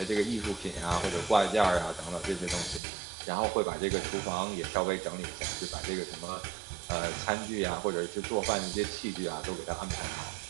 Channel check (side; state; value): left; drops out; at 2.8 s